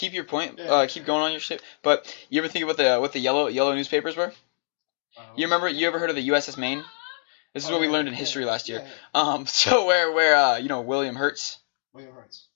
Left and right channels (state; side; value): silent; right; digital silence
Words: your point. Yeah. Keep going on your shit. But you ever think about what the yellow newspapers were? You remember? You ever heard of the USS Maine? This is what we learned in history last year. Yeah. So where you know William Hertz? William Hertz.